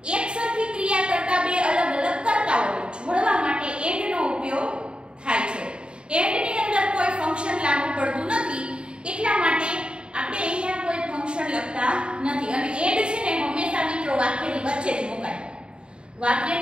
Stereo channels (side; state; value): left; late; 0.052 ms